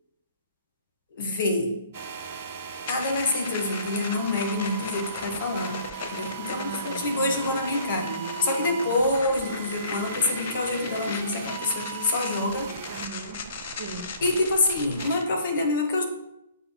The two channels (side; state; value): both; inverted; correlation -0.54